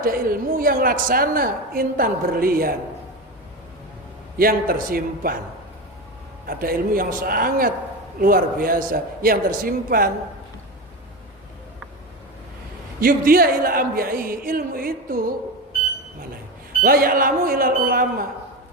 ilmu yang laksana intan berlian yang tersimpan. Ada ilmu yang sangat luar biasa yang tersimpan. Yubdiya ila anbiya'i, ilmu itu mana? La ya'lamu ilal ulama.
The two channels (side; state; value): both; normal; correlation 0.21